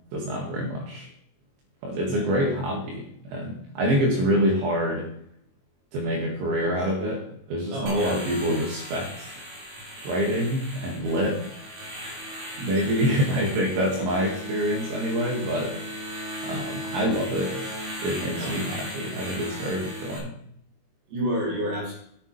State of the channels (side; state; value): left; late; 22 ms